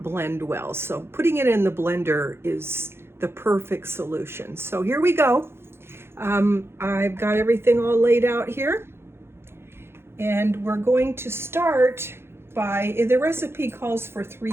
blend well. So putting it in the blender is the perfect solution. So here we go. I've got everything all laid out here, and we're going to start by, the recipe calls for 3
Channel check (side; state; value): left; late; 0.12 ms